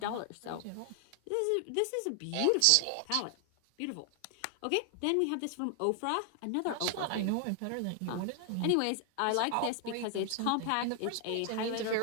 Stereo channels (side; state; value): both; different; correlation 0.00